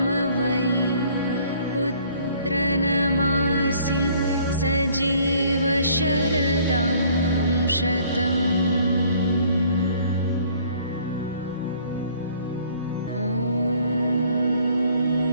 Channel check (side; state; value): both; inverted; correlation -0.58